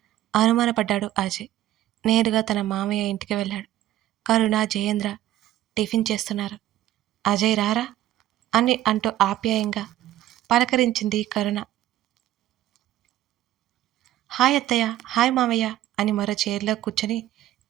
అనుమానపడ్డాడు అజయ్. నేరుగా తన మామయ్య ఇంటికి వెళ్ళాడు. కరుణ, జయేంద్ర టిఫిన్ చేస్తున్నారు. అజయ్ రారా అని అంటూ ఆప్యాయంగా పలకరించింది కరుణ. హాయ్ అత్తయ్య, హాయ్ మామయ్య అని మరో చైర్లో కూర్చొని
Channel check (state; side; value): quieter; left; 13.6 dB